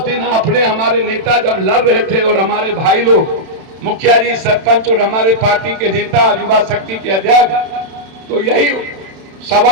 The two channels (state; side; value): late; left; 31 ms